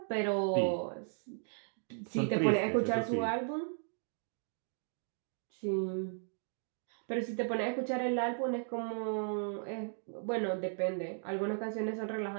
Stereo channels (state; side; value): silent; left; digital silence